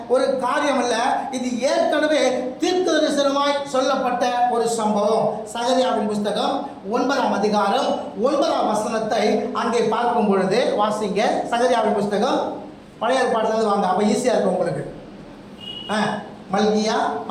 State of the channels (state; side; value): identical; both; correlation 1.00